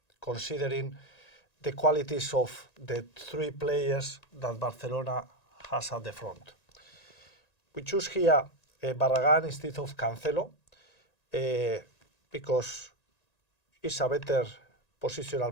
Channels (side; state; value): right; late; 1.9 ms